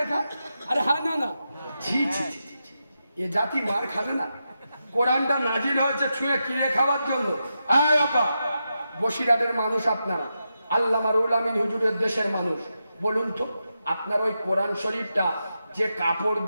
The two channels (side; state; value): both; inverted; correlation -0.88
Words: খা। আরে হ্যাঁ, না না, ছি ছি, এ জাতি মার খাবে না? কোরআনটা নাজিল হয়েছে ছুঁয়ে কিনে খাওয়ার জন্য। আয় বাবা, বসিরহাটের মানুষ আপনারা, আল্লামা রুহুল আমিন হুজুরের দেশের মানুষ, বলুন তো আপনার ওই কোরআন শরীফটা যে কাপড়